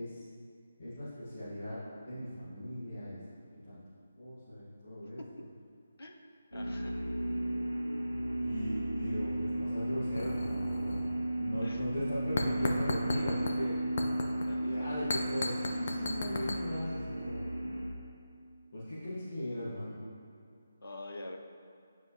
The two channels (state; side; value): inverted; both; correlation -0.92